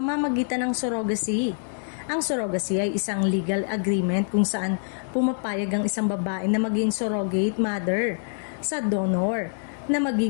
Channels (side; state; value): right; silent; digital silence